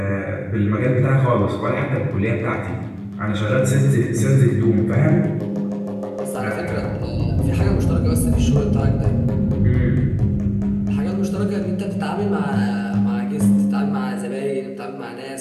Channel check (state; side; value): identical; both; correlation 1.00